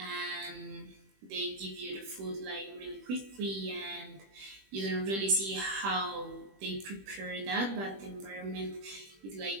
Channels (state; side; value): late; left; 21 ms